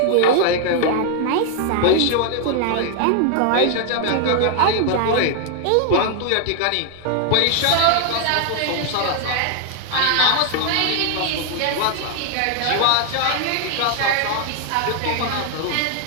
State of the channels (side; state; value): both; different; correlation 0.00